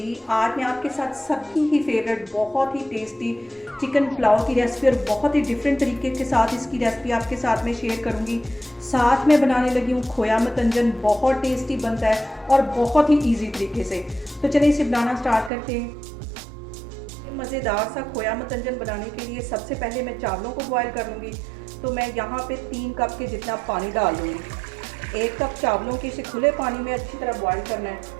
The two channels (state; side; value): drops out; left; at 15.5 s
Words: आज मैं आपके साथ सबकी ही फेवरेट बहुत ही टेस्टी चिकन पुलाव की रेसिपी और बहुत ही डिफरेंट तरीके के साथ इसकी रेसिपी आपके साथ में शेयर करूंगी। साथ में बनाने लगी हूँ खोया मतंजन, बहुत टेस्टी बनता है और बहुत ही इजी तरीके से। तो चलिए इसे बनाना स्टार्ट करते हैं। मज़ेदार सा खोया मतंजन बनाने के लिए सबसे पहले मैं चावलों को बॉयल कर लूँगी। तो मैं यहाँ पे 3 कप के जितना पानी डाल दूँगी। 1 कप चावलों के इसे खुले पानी में अच्छी तरह बॉयल करना